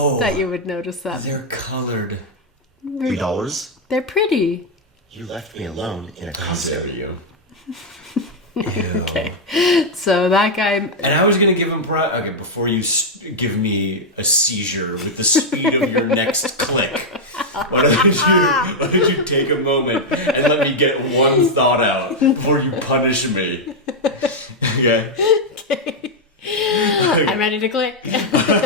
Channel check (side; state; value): both; normal; correlation -0.01